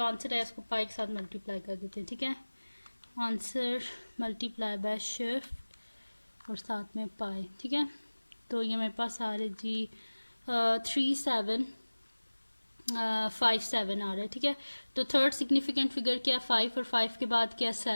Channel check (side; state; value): both; inverted; correlation -1.00